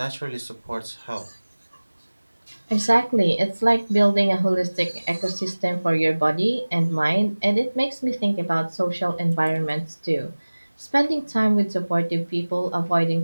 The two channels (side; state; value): both; inverted; correlation -1.00